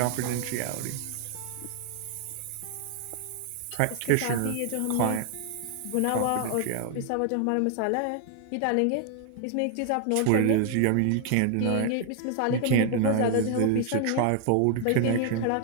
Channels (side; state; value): both; different; correlation 0.00